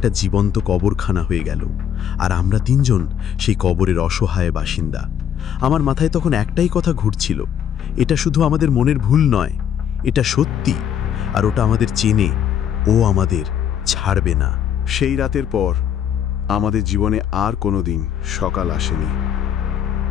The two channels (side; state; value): right; quieter; 9.1 dB